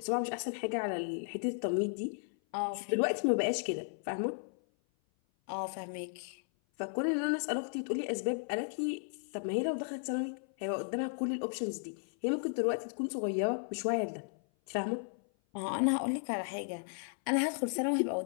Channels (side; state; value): right; silent; 55 dB below the other